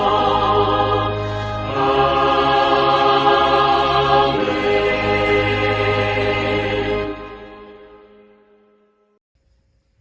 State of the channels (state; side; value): identical; both; correlation 1.00